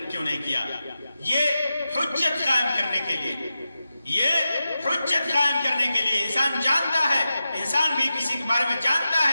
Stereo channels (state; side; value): inverted; both; correlation -0.91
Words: کیوں نہیں کیا۔ یہ حجت قائم کرنے کے لیے، یہ حجت قائم کرنے کے لیے انسان جانتا ہے، انسان بھی کسی کے بارے میں جانتا